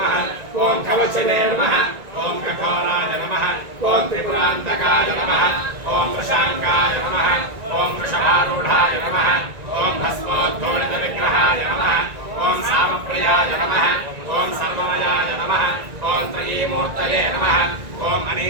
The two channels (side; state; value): left; late; 1.9 ms